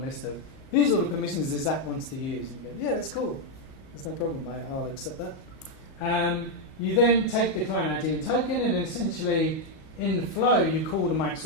of, here's all the permissions this app wants to use. And you go, yeah, that's cool. There's no problem, I'll accept that. You then take the client ID and token, and then essentially in the flow you call the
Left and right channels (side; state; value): right; late; 37 ms